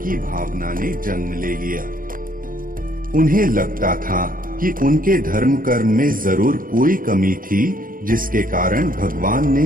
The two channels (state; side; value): late; left; 0.41 ms